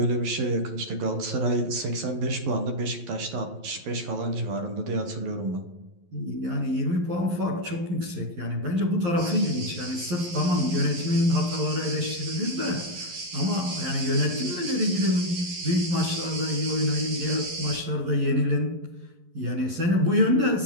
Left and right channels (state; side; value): late; left; 11 ms